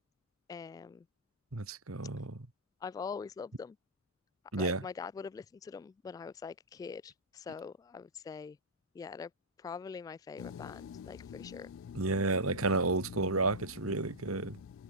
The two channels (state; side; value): normal; both; correlation -0.10